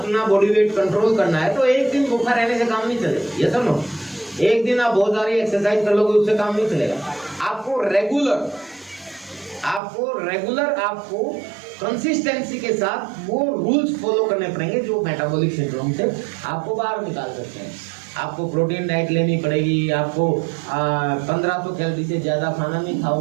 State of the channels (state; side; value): drops out; left; at 9.8 s